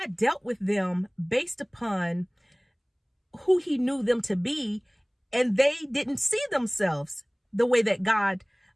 dealt with them based upon who he knew them to be, and they didn't see themselves the way that God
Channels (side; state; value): both; identical; correlation 1.00